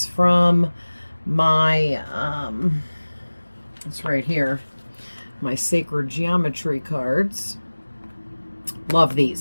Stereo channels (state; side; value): inverted; both; correlation -1.00